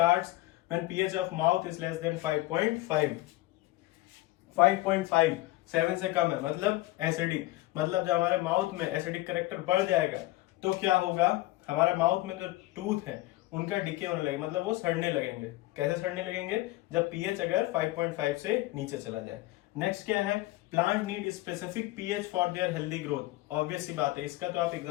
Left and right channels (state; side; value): quieter; right; 18.7 dB